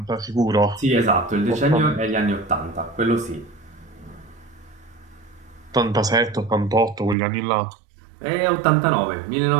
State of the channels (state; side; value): drops out; left; at 7.2 s